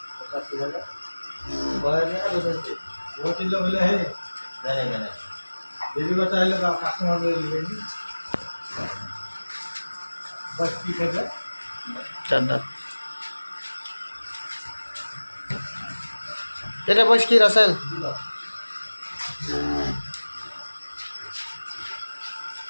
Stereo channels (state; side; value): inverted; both; correlation -1.00